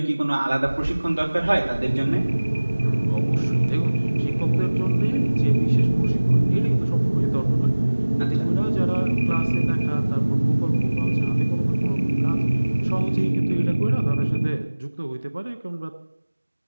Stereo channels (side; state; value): both; inverted; correlation -1.00